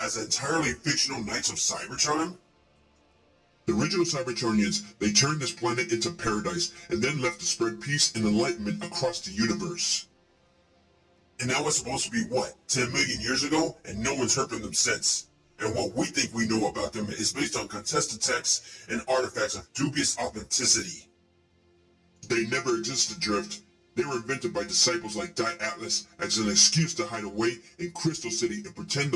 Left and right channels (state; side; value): identical; both; correlation 1.00